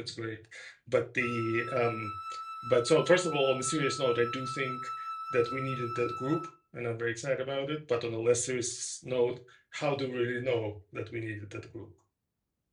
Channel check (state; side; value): identical; both; correlation 1.00